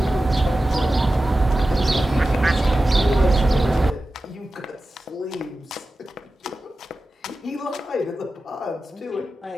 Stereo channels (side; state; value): both; normal; correlation 0.94